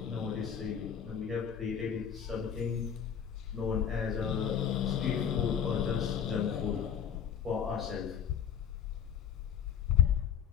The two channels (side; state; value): right; quieter; 8.2 dB